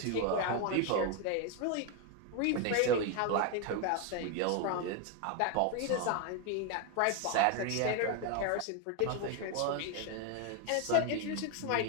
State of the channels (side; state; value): both; different; correlation 0.01